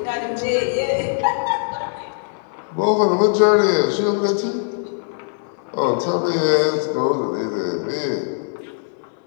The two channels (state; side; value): silent; right; 65 dB below the other